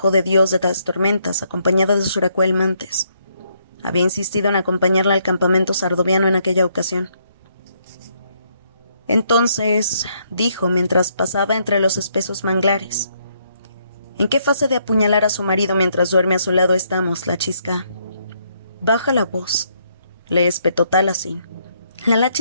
de Dios de las Tormentas, acompañada de Suracuel Mantes. Había insistido en acompañarla al campamento sardoviano en aquella ocasión. Entonces, dijo mientras pasaba entre los espesos manglares, ¿en qué fase de apuñalar a su marido mientras duerme a su lado estamos, la chisca? Baja la voz, le espetó Taliesin. La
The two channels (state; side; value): inverted; both; correlation -0.73